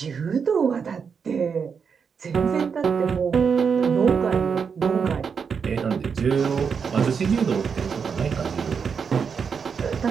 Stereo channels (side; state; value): left; quieter; 6.2 dB